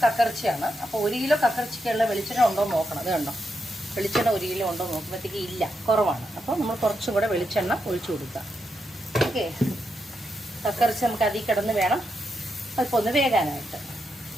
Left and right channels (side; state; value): both; normal; correlation 0.84